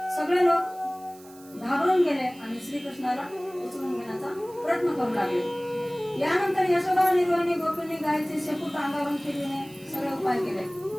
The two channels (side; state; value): right; noise; hiss, 23 dB below the sound